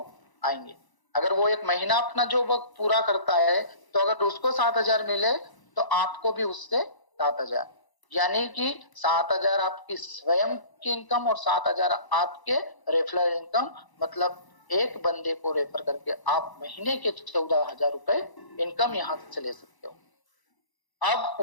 आएंगे। अगर वो एक महीना अपना जॉब वर्क पूरा करता है तो अगर उसको 7,000 मिले तो आपको भी उससे 7,000, यानी कि 7,000 आपकी स्वयं की इनकम और 7,000 आपके रेफरल इनकम। मतलब एक बंदे को रेफर करके आप महीने के 14,000 रुपए इनकम यहाँ से ले सकते हो। अब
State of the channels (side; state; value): right; late; 1.0 ms